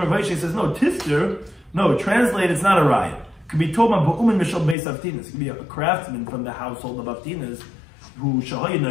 Vaishya says, no, tifter, no, translate, it's not a riot. It could be told by Ba'umin Mishal Beis Avtinas. It could be a craftsman from the household of Avtinas who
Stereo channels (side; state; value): right; drops out; at 4.8 s